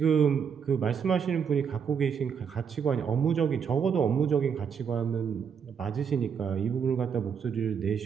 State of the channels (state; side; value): quieter; left; 7.0 dB